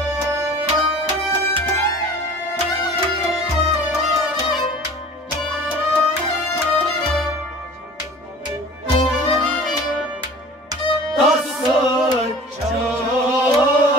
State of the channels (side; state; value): both; normal; correlation 0.43